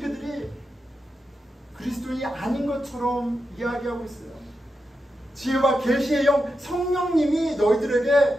그리스도인이 아닌 것처럼 이야기하고 있어요. 지혜와 계시의 영 성령님이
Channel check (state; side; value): normal; both; correlation 0.88